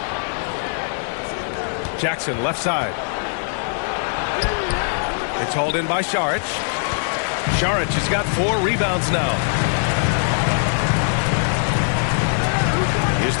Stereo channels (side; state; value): right; silent; digital silence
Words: Jackson, left side. It's hauled in by Šarić. Šarić has got 4 rebounds now. Here's